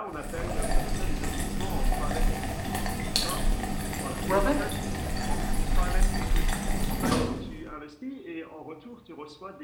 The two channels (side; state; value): both; identical; correlation 1.00